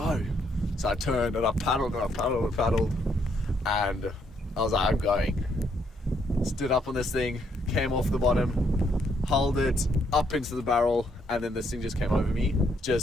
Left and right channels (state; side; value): normal; both; correlation 0.72